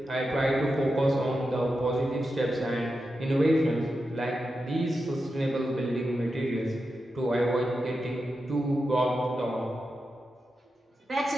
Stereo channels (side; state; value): both; normal; correlation 0.89